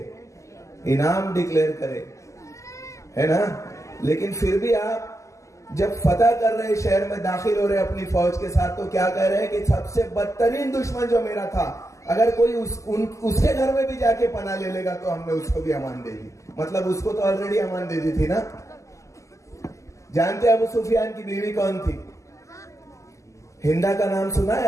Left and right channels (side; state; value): right; late; 0.15 ms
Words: इनाम डिक्लेयर करे, है ना। लेकिन फिर भी आप जब फतह कर रहे, शहर में दाखिल हो रहे अपनी फौज के साथ, तो क्या कह रहे हैं कि सबसे बदतरीन दुश्मन जो मेरा था, अगर कोई उसके घर में भी जाके पनाह ले लेगा तो हमने उसको भी अमान दे दी। मतलब उसको तो ऑलरेडी अमान दे दी थी ना। जानते अबू सुफियान की बीवी कौन थी? हिंदा का नाम सुना